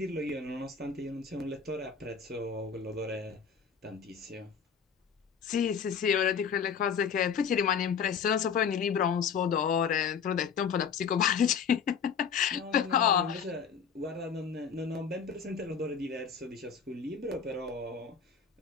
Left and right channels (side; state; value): right; quieter; 6.7 dB